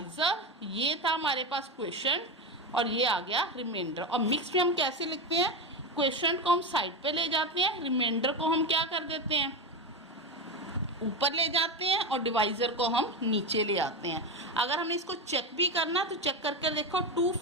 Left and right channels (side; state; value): both; normal; correlation 0.17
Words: ये था हमारे पास क्वेश्चन और ये आ गया रिमाइंडर. और मिक्स में हम कैसे लिखते हैं, क्वेश्चन को हम साइड पे ले जाते हैं, रिमाइंडर को हम क्या कर देते हैं ऊपर ले जाते हैं और डिवाइजर को हम नीचे ले आते हैं. अगर हमने इसको चेक भी करना तो चेक करके देखो. 2